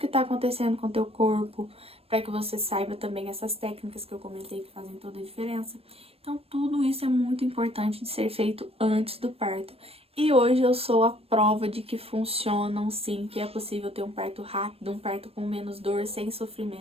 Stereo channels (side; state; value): left; late; 0.28 ms